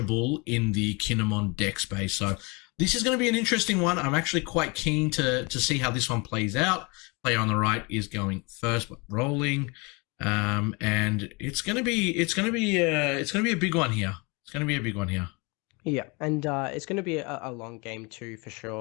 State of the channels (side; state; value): right; quieter; 29.0 dB